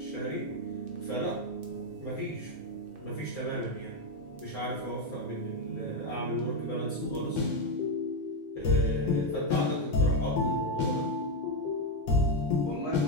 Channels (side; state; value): both; normal; correlation 0.07